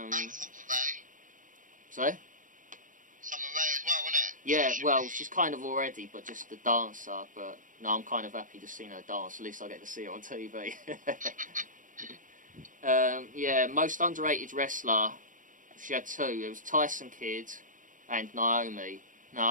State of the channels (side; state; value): left; late; 0.38 ms